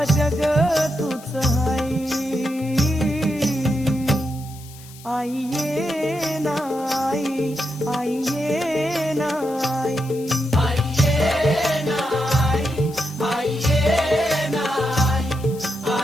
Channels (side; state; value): left; noise; hiss, 20 dB below the sound